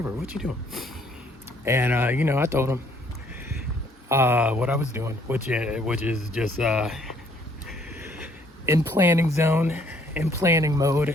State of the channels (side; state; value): both; normal; correlation 0.63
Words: What you doing? And you know, I told him what I was doing, which is just in planning zone, in planning mode,